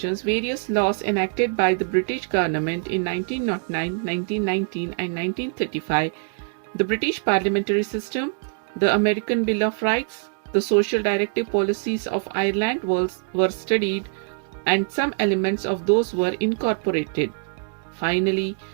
various laws enacted by the British government in 1909, 1919, and 1935, the British parliamentary system, the American Bill of Rights, the social directive policies of Ireland were studied, and some elements of those were incorporated. Finally,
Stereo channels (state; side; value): silent; left; digital silence